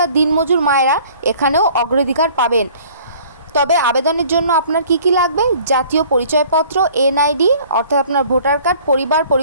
দিনমজুর মায়েরা এখানেও অগ্রাধিকার পাবেন। তবে আবেদনের জন্য আপনার কি কি লাগবে? জাতীয় পরিচয়পত্র, এনআইডি অর্থাৎ আপনার ভোটার কার্ড, পরিবার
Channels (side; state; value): both; inverted; correlation -0.52